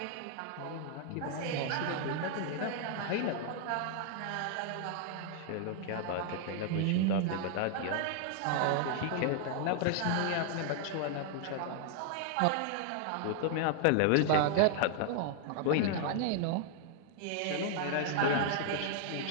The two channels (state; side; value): different; both; correlation 0.00